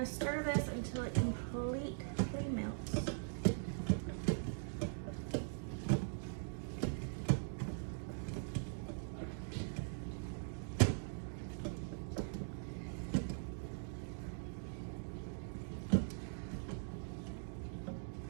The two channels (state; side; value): silent; left; digital silence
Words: stir this until it completely melts.